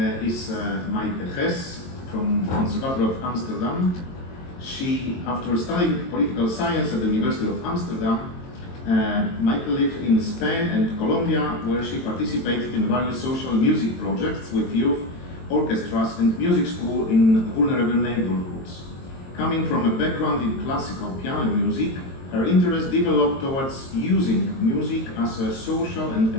Is Maite Hess from Conservatoire of Amsterdam. She, after studying political science at the University of Amsterdam, Maite lived in Spain and Colombia, where she participated in various social music projects with youth, orchestras and music school in vulnerable neighborhoods. Coming from a background in classical piano music, her interest developed towards using music as a social and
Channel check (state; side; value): late; right; 22 ms